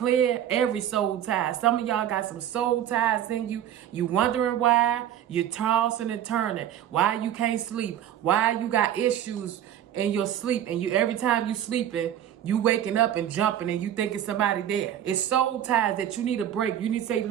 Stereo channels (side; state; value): left; quieter; 10.8 dB